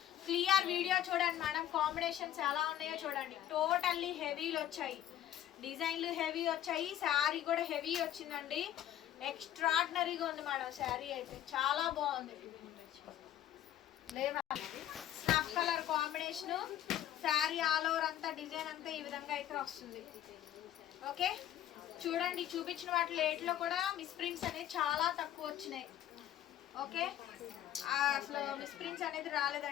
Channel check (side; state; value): right; quieter; 11.8 dB